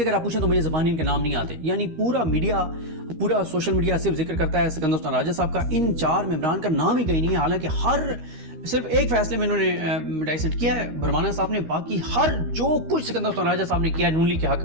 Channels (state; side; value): late; left; 13 ms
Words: اگر آپ پوچھیں تو مجھے زبانی ان کے نام نہیں آتے. یعنی پورا میڈیا، پورا سوشل میڈیا صرف ذکر کرتا ہے سکندر حسین راجہ صاحب کا، ان 4 ممبران کا نام ہی کہیں نہیں ہے. حالانکہ صرف ایک فیصلے میں انہوں نے ڈائسنٹ کیا ہے برمانہ صاحب نے، باقی ہر جو کچھ سکندر حسین راجہ صاحب نے کیا ہے نون لیگ کے حق